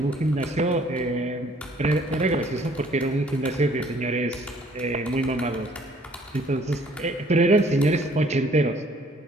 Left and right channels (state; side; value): normal; both; correlation 0.59